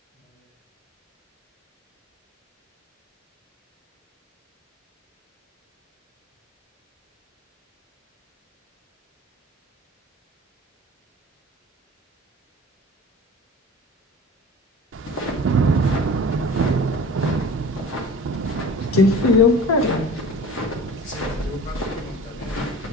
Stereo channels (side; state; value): both; normal; correlation 0.41